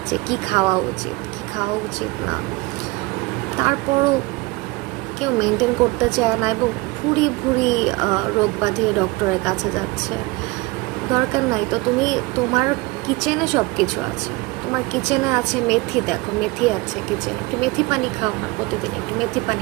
যে কি খাওয়া উচিত কি খাওয়া উচিত না। তারপরও কেউ মেনটেন করতে চায় না এবং ভুরি ভুরি রোগ বাঁধিয়ে ডক্টরের কাছে যাচ্ছে। দরকার নাই তো। তুমি তোমার কিচেনে সব কিছু আছে, তোমার কিচেনে আছে মেথি, দেখো মেথি আছে কিচেনে, একটু মেথি পানি খাও না প্রতিদিন, একটু মেথি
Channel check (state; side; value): quieter; left; 23.2 dB